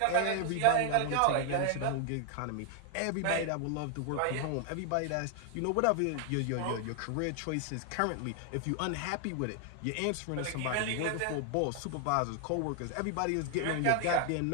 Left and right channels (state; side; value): different; both; correlation 0.00